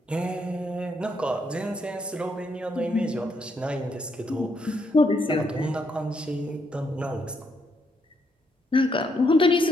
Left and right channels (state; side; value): normal; both; correlation 0.76